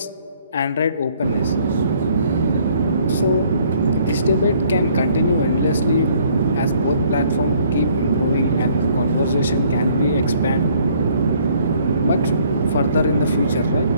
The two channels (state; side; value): inverted; both; correlation -0.62